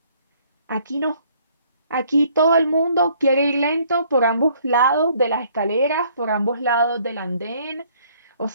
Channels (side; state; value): both; inverted; correlation -0.62